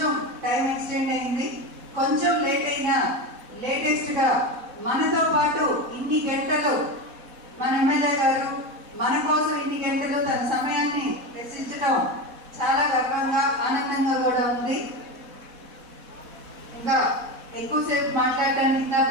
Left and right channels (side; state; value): left; late; 4.1 ms